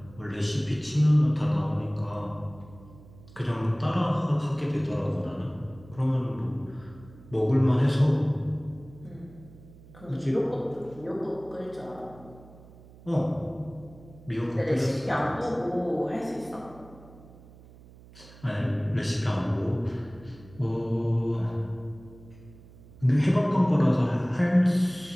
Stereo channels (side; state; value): right; noise; hum, 21 dB below the sound